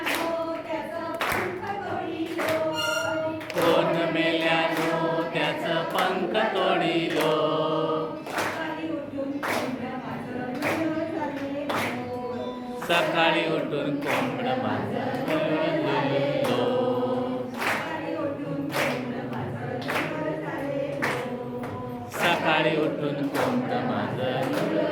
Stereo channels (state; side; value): identical; both; correlation 1.00